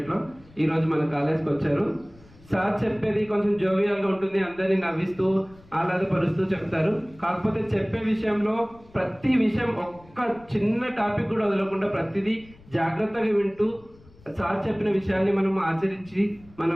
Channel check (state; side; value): noise; left; rumble, 25 dB below the sound